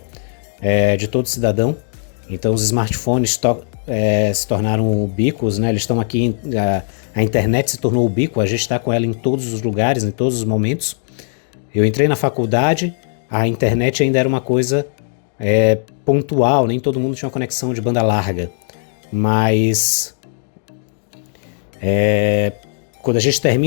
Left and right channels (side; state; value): right; silent; digital silence